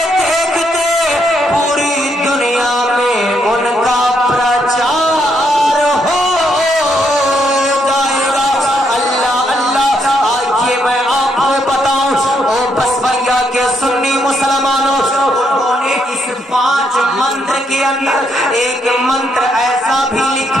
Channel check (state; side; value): normal; both; correlation 0.75